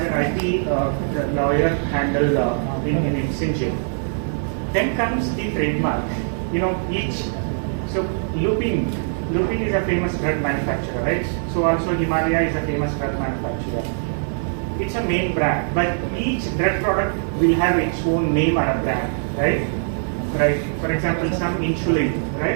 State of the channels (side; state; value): left; silent; digital silence